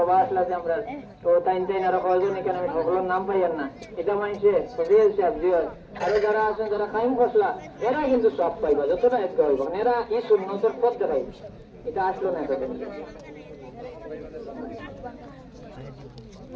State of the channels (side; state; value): both; identical; correlation 1.00